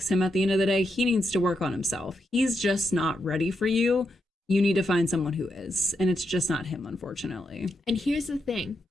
him at the end of the day. He needs to work on himself. He's just not ready for you. You need to find someone who is. And it's just not him, unfortunately. And here's the thing.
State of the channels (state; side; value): normal; both; correlation 0.83